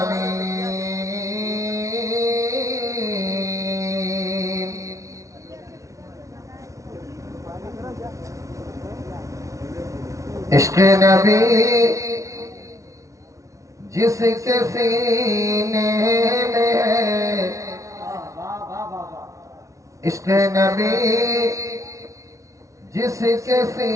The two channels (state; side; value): late; left; 0.15 ms